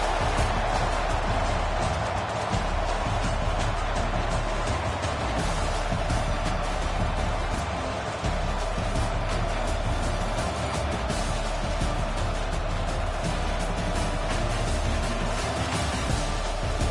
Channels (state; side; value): identical; both; correlation 1.00